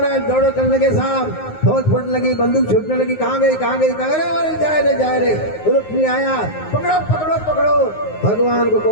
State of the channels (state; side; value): late; right; 9.5 ms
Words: दौड़ो करने के साथ फौज फूटने लगी, बंदूक छूटने लगी। कहाँ गई कहाँ गई, कहाँ गए? जाए रे। रुक्मिणी आया, पकड़ो पकड़ो पकड़ो। भगवान को